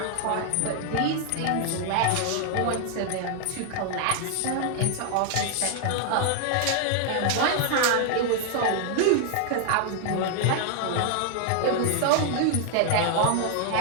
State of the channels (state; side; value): different; both; correlation 0.00